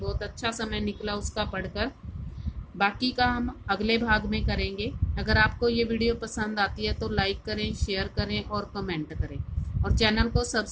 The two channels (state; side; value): identical; both; correlation 1.00